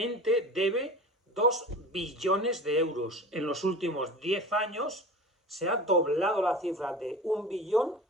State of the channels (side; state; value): both; normal; correlation 0.35